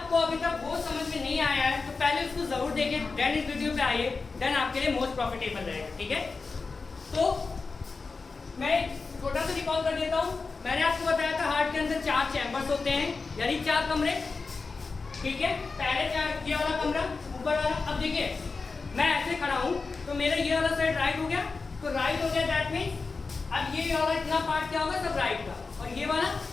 अभी तक वो समझ में नहीं आया है तो पहले उसको जरूर देखिए, देन इस वीडियो पे आइए, देन आपके लिए मोस्ट प्रॉफिटेबल रहेगा। ठीक है, तो मैं छोटा सा रिकॉल कर देता हूँ। मैंने आपको बताया था हार्ट के अंदर 4 चैम्बर्स होते हैं, यानी 4 कमरे। ठीक है, पहले 4 ये वाला कमरा ऊपर वाला। अब देखिए मैं ऐसे खड़ा हूँ तो मेरा ये वाला साइड राइट हो गया, तो राइट हो गया, दैट मीन्स अब ये वाला इतना पार्ट क्या होगा, सब राइट का, और ये वाला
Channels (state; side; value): quieter; right; 4.3 dB